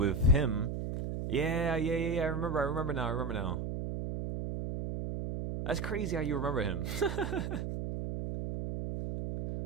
him. Yeah. I remember now. That's crazy how you remember him.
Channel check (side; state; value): right; noise; hum, 3 dB below the sound